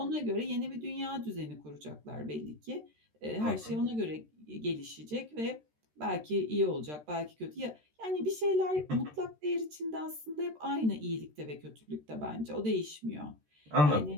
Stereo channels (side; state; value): left; late; 13 ms